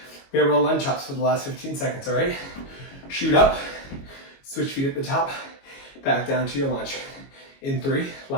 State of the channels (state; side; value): late; right; 22 ms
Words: We have our lunge chops for the last 15 seconds, all right? Shoot up, switch feet at the top, back down to your lunge. In 3,